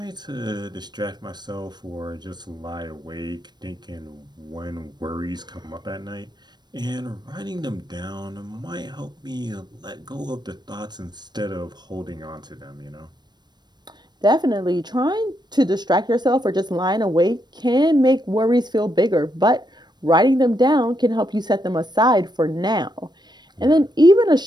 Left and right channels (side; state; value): left; late; 0.21 ms